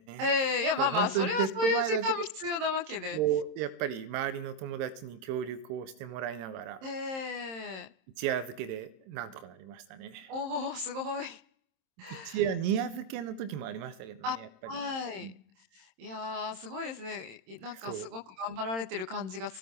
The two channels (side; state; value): left; late; 26 ms